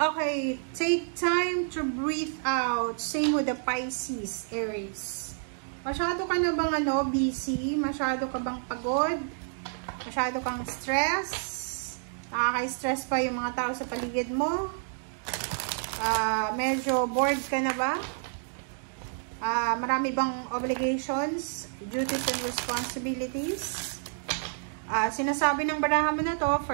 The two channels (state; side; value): silent; left; digital silence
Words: Okay, take time to breathe out. Same with the Pisces, Aries. Masyado ka na bang busy? Masyado ka bang pagod? Masyado kang stress? Nakaka-stress pa yung mga tao sa paligid mo? Medyo bored ka na ba? Marami bang obligations, duties and responsibilities? Sinasabi ng barahan mo na to,